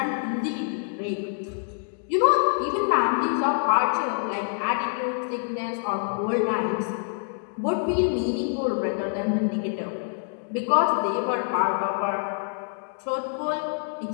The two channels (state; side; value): silent; right; digital silence